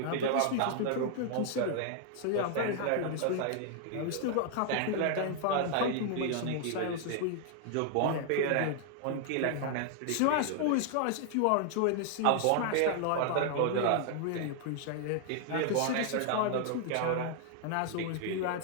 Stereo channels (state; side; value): different; both; correlation 0.00